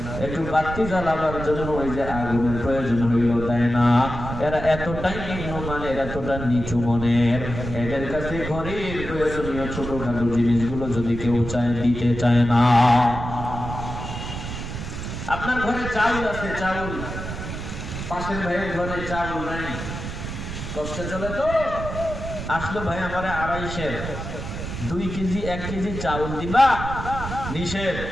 একটু বাতি জ্বালাবার জন্য ওই যে আগুনের প্রয়োজন হইল দেয় না এরা এতটাই নিম্নমানের এতটা নিচু মনের এদের কাছে ঘরের প্রয়োজনীয় ছোটখাটো জিনিসগুলো যদি কেউ চায় দিতে চায় না আপনার ঘরে চাউল আছে চাউল পাশের ভাইয়ের ঘরে চাউল নাই কষ্টে চলে তো আসলো ভাই আমারে 2.5 কেজি 1 কেজি চাউল দিবা নিষেধ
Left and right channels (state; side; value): noise; right; rumble, 7 dB below the sound